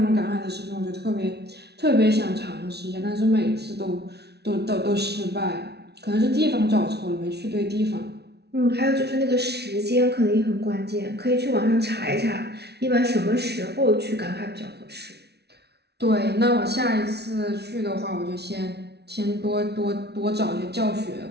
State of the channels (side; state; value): left; late; 0.49 ms